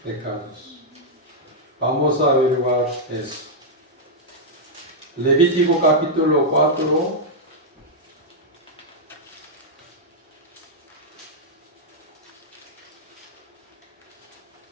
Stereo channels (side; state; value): both; normal; correlation -0.05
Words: pecados. Vamos a averiguar eso. Levítico capítulo 4.